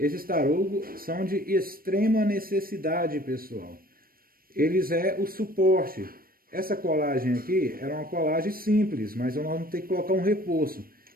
tarugos são de extrema necessidade, pessoal. Eles é o suporte. Essa colagem aqui era uma colagem simples, mas nós vamos ter que colocar um reforço.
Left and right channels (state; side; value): late; left; 0.43 ms